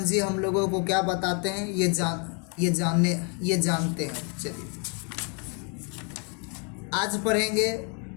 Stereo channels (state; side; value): quieter; right; 37.5 dB